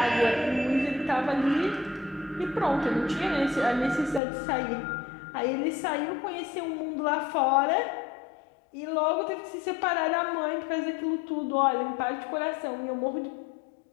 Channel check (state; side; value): drops out; right; at 4.2 s